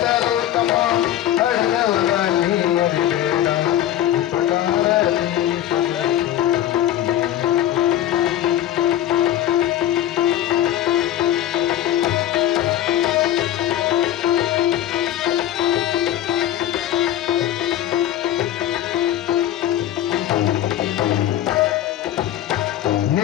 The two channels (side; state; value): right; quieter; 12.3 dB